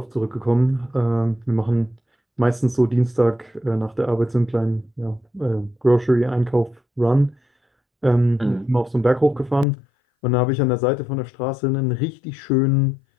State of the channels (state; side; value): drops out; right; at 9.7 s